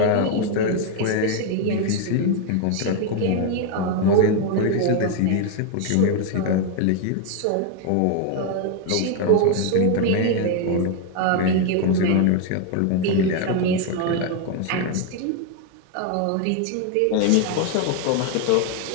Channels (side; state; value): both; different; correlation 0.01